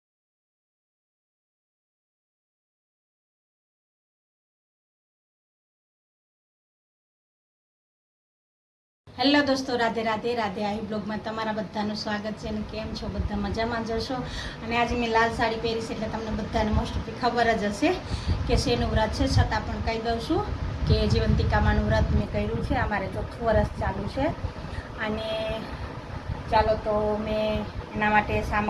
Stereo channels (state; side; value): identical; both; correlation 1.00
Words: હેલો દોસ્તો, રાધે રાધે રાધે. આવી બ્લોગમાં તમારા બધાનું સ્વાગત છે. અને કેમ છો બધા? મજામાં જશો. અને આજે મેં લાલ સાડી પહેરી છે એટલે તમને બધાને મોસ્ટ ઓફલી ખબર જ હશે કે શેનું વ્રત છે. છતાં પણ કહી દઉં છું કે જીવંતિકામાનું વ્રત મેં કર્યું છે. અમારે ચોથું વર્ષ ચાલુ છે. અને ચાલો તો મેં એના માટે